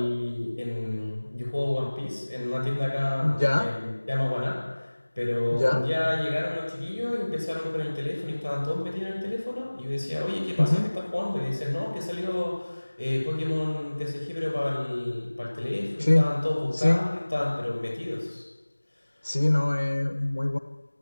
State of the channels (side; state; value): both; inverted; correlation -1.00